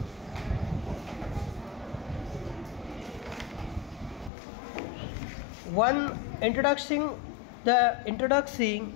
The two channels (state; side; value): drops out; right; at 4.3 s